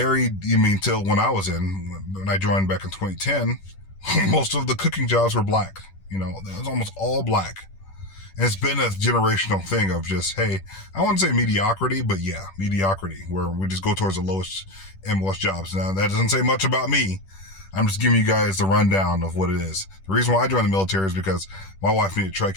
when I was when I joined back in 2010, most of the cooking jobs were black. It was almost all black. And it's been a generational thing of just, hey, I wouldn't say mediocrity, but yeah, mediocrity, where we just go towards the lowest MOS jobs. Now, that doesn't say much about me. I'm just giving you guys the rundown of what it is. The reason why I joined the military is because my wife needed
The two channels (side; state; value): right; late; 10 ms